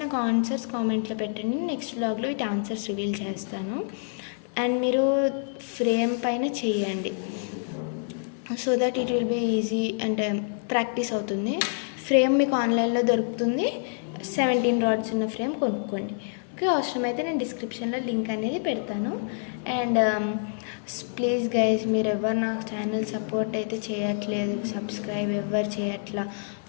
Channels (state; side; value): silent; right; 60 dB below the other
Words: నాకు ఆన్సర్స్ కామెంట్లో పెట్టండి. నెక్స్ట్ బ్లాగ్లో వీటి ఆన్సర్స్ రివీల్ చేస్తాను. అండ్ మీరు ఫ్రేమ్ పైన చేయండి, so that it will be easy అంటే ప్రాక్టీస్ అవుతుంది. ఫ్రేమ్ మీకు ఆన్లైన్లో దొరుకుతుంది. 17 రాడ్స్ ఉన్న ఫ్రేమ్ కొనుక్కోండి. ఓకే, అవసరమైతే నేను డిస్క్రిప్షన్లో లింక్ అనేది పెడతాను. అండ్ ప్లీజ్ గైజ్, మీరు ఎవరు నా ఛానల్ సపోర్ట్ అయితే చేయట్లేదు, సబ్స్క్రైబ్ ఎవరు చేయట్లా.